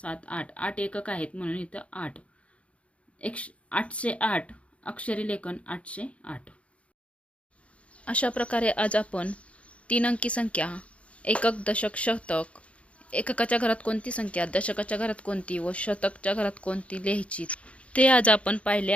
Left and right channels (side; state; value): right; late; 0.062 ms